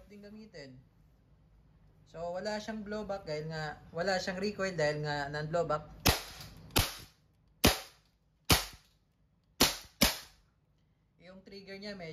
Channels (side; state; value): both; identical; correlation 1.00